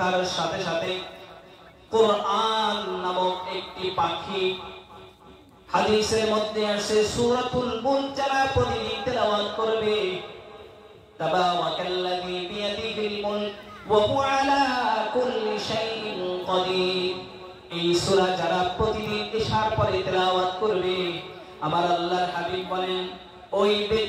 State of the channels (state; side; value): identical; both; correlation 1.00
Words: সাথে সাথে কোরআন নামক একটি পাখি, হাদিসের মধ্যে আসে সূরাতুল মুলক যারা প্রতিদিন তেলাওয়াত করবে, তাবারাকাল্লাযী বিয়াদিহিল মুলক ওয়া হুয়া আলা কুল্লি শাইইন কাদির। এই সূরা যারা প্রতিদিন ইশার পরে তেলাওয়াত করবে, আমার আল্লাহর হাবিব বলেন ওই